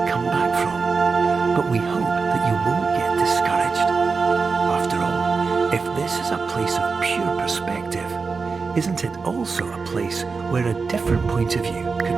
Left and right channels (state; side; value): quieter; left; 4.7 dB